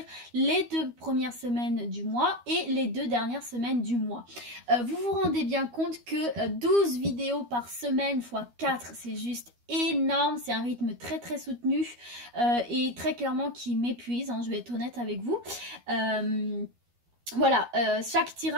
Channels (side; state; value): left; late; 12 ms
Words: les 2 premières semaines du mois et les 2 dernières semaines du mois. Vous vous rendez bien compte que 12 vidéos par semaine fois 4, c'est juste énorme, c'est un rythme très très soutenu et très clairement qui m'épuise, hein, je vais être honnête avec vous. Voilà, chaque